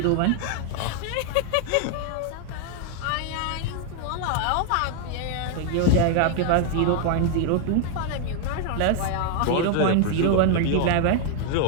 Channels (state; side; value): different; both; correlation 0.00